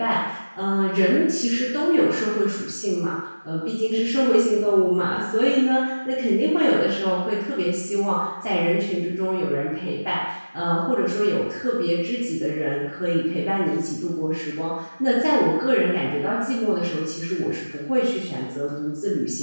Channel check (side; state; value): both; inverted; correlation -1.00